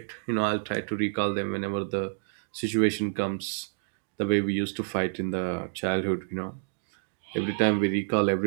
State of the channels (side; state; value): left; silent; digital silence